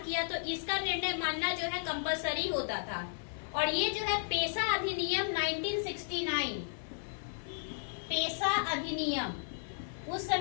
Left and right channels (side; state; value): right; silent; digital silence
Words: तो इसका निर्णय मानना जो है कंपलसरी होता था। और ये जो है पेशा अधिनियम 1969, पेशा अधिनियम, उस